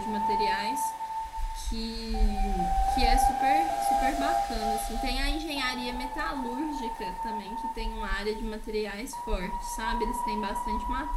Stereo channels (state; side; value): identical; both; correlation 1.00